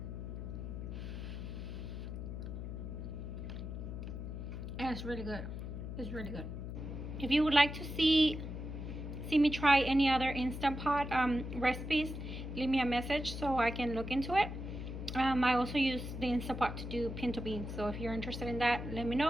And it's really good. It's really good. If you would like to see me try any other Instant Pot recipes, leave me a message so I can look into it. I also use the Instant Pot to do pinto beans, so if you're interested in that, let me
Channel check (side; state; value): left; noise; hum, 6 dB below the sound